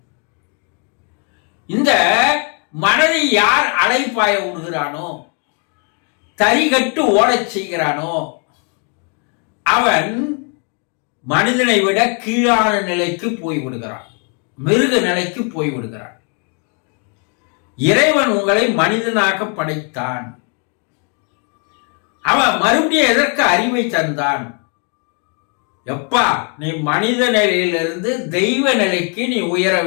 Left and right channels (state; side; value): quieter; right; 39.4 dB